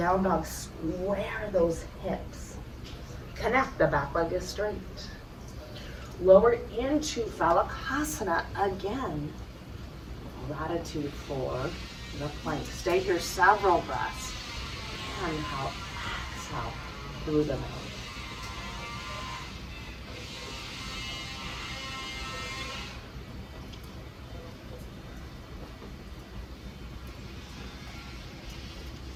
dog, square those hips. Connect, the back leg is straight. Lower into Phalakasana again. Gratitude for the plank. Stay here several breaths. Inhale, exhale through the mouth.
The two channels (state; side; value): identical; both; correlation 1.00